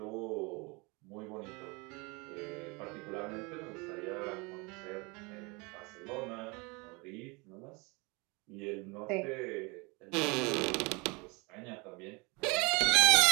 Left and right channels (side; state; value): left; quieter; 27.9 dB